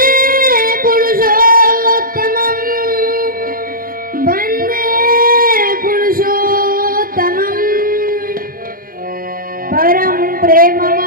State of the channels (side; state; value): left; late; 0.42 ms